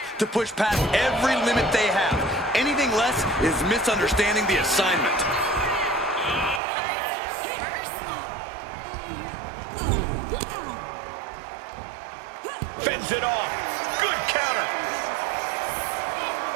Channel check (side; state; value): left; drops out; at 6.6 s